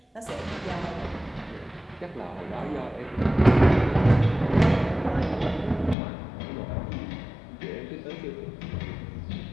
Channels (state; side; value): drops out; right; at 6.0 s